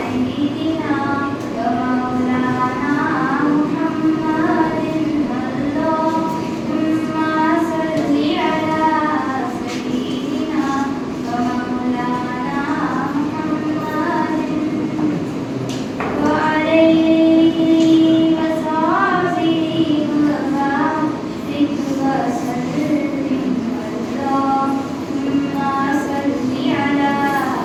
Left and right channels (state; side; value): identical; both; correlation 1.00